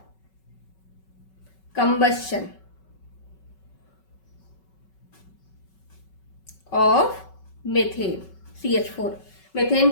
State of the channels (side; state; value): right; late; 5.3 ms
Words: combustion of methane. CH4। Methane